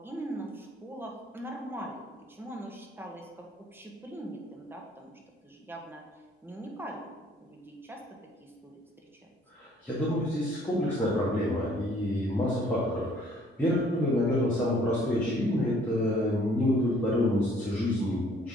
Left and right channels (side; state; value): both; normal; correlation 0.60